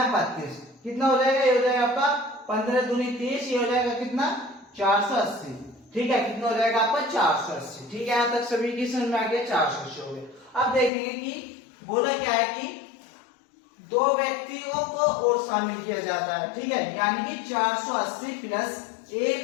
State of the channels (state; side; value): drops out; right; at 10.9 s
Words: 32, कितना हो जाएगा, ये हो जाएगा आपका 15 दूनी 30, ये हो जाएगा कितना 480। ठीक है, कितना हो जाएगा आपका 480। ठीक है, यहां तक सभी की समझ में आ गया, 480 हो गया। अब देखेंगे कि बोला क्या है कि 2 व्यक्तियों को और शामिल किया जाता है। ठीक है, यानी कि 480 प्लस ए